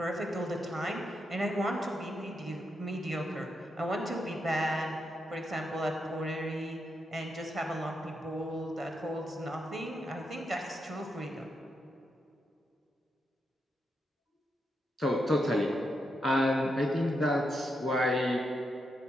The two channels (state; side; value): normal; both; correlation 0.83